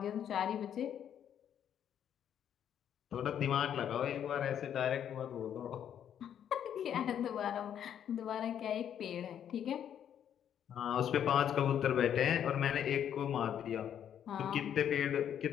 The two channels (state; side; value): quieter; right; 9.4 dB